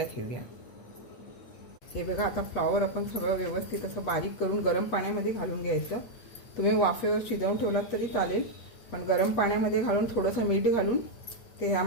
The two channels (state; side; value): late; right; 8.5 ms